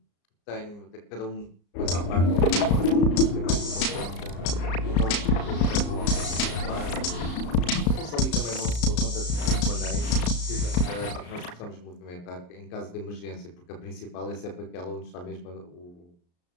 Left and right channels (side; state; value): right; late; 34 ms